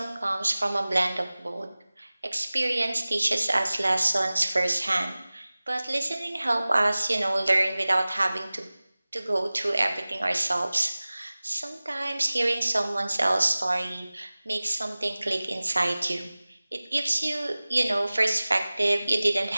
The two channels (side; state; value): both; inverted; correlation -0.99